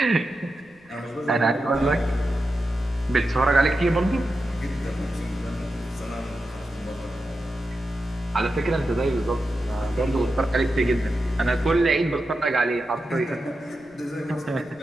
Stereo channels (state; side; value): noise; right; rumble, 30 dB below the sound